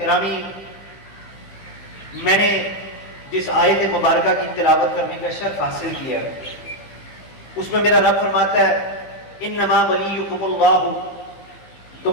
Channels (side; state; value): right; late; 15 ms